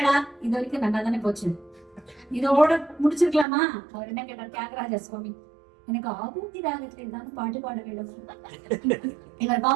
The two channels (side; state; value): left; drops out; at 3.5 s